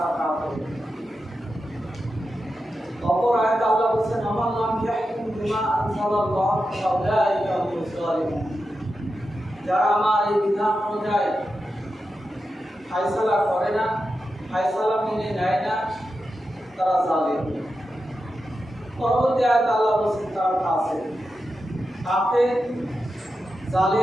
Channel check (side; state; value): both; normal; correlation 0.90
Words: কাফির। অপর আয়াতে আল্লাহ বলেছেন, আমান লাম ইয়াহকুম বিমা আনজালাল্লাহ ফাউলাইকা হুমুজ জালিমুন। যারা আমার এই বিধান অনুযায়ী ফায়সালা করে না, ফায়সালা মেনে নেয় না, তারা জালিম। পরবর্তী আয়াতে আল্লাহ বলেছেন তারা ফাসিক। কাফের,